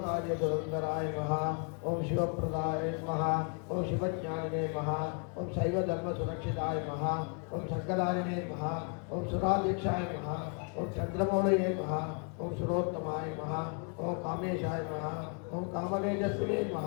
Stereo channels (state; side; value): quieter; right; 38.6 dB